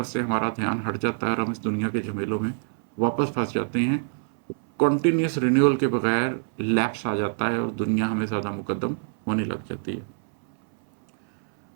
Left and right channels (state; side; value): silent; left; 59 dB below the other